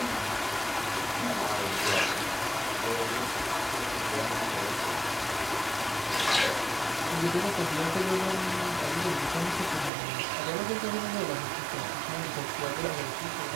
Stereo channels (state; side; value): drops out; left; at 9.9 s